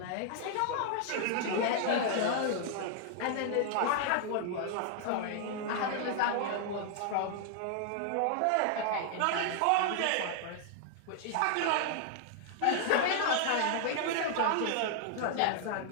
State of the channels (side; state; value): both; different; correlation 0.00